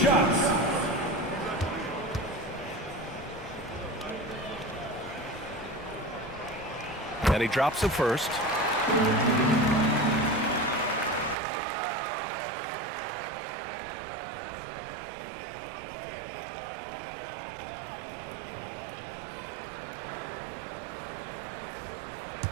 And he drops the first.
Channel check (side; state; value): left; drops out; at 11.4 s